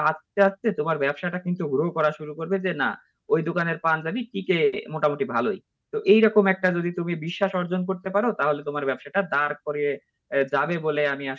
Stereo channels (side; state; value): both; identical; correlation 1.00